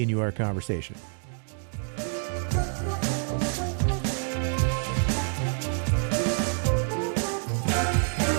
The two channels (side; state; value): left; silent; 56 dB below the other